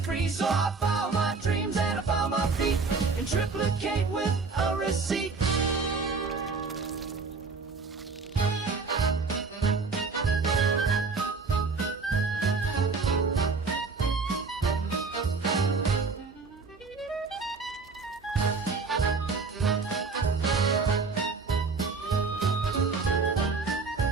So I filed my dreams and I found my feet in triplicate with a receipt.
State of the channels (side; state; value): left; quieter; 4.4 dB